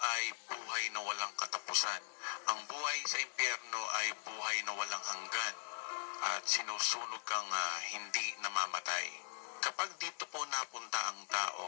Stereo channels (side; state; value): right; silent; 51 dB below the other